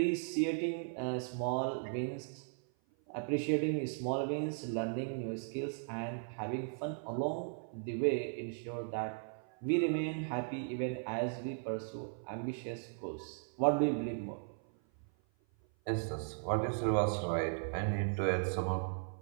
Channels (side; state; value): left; silent; 53 dB below the other